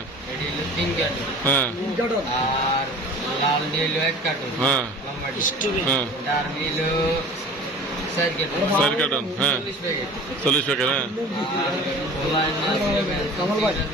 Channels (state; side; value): normal; both; correlation 0.42